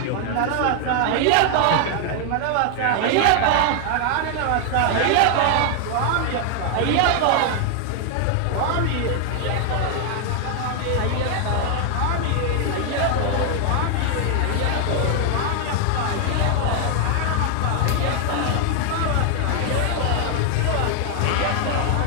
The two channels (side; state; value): both; different; correlation 0.00